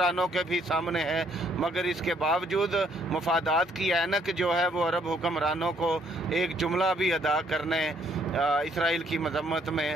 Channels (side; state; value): both; normal; correlation 0.67